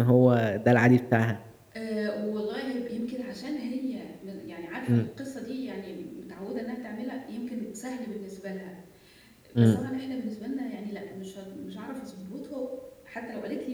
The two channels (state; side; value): identical; both; correlation 1.00